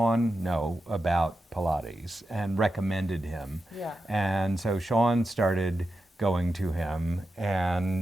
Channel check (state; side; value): normal; both; correlation 0.90